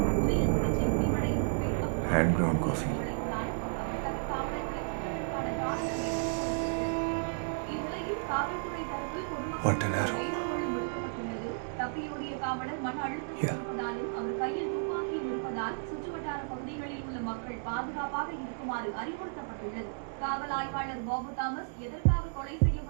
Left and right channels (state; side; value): silent; left; digital silence